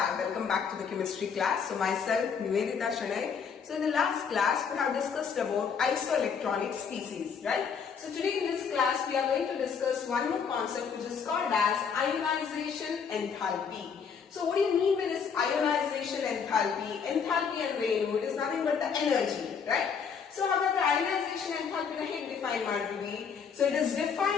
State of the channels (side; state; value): right; quieter; 6.4 dB